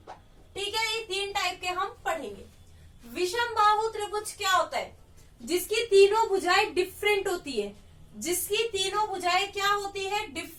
ठीक है, ये 3 टाइप के हम पढ़ेंगे। विषम बाहु त्रिभुज क्या होता है? जिसकी तीनों भुजाएं डिफरेंट होती है। जिसकी तीनों भुजाएं क्या होती है?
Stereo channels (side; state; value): both; identical; correlation 1.00